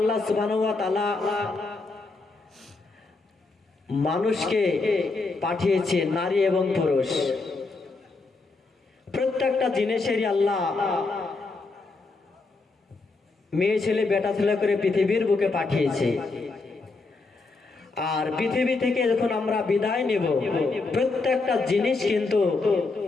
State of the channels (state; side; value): quieter; right; 3.7 dB